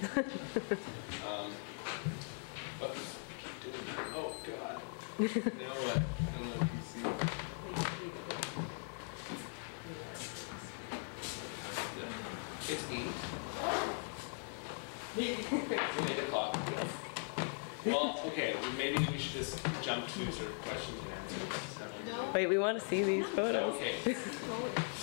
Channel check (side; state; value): right; silent; 51 dB below the other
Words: But keep doing that. Oh, God. You know what? I don't know if you see. It's 8. It's 8 o'clock. Well, okay, maybe we should just jump to sort of questions and answers. No. Wait, we want to see these photos. Okay.